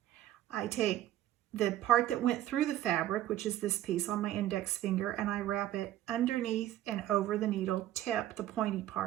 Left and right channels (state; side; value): quieter; left; 13.1 dB